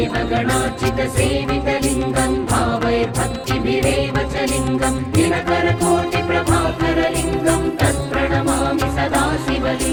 भावैर्भक्तिभिरेव च लिङ्गं दिनकरकोटिप्रभाकरलिङ्गं तत्प्रणमामि सदा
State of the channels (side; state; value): both; identical; correlation 1.00